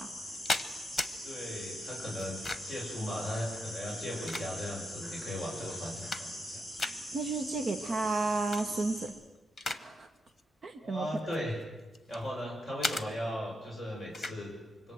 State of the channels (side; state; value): both; normal; correlation 0.83